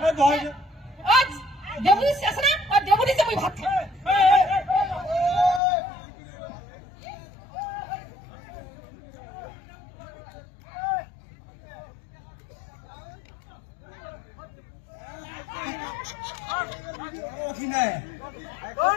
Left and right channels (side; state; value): right; drops out; at 5.6 s